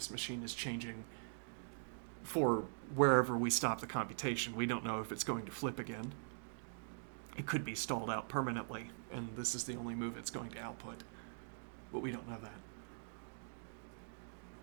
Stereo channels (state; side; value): silent; left; digital silence